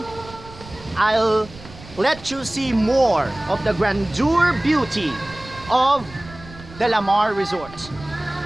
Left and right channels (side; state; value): right; noise; rumble, 18 dB below the sound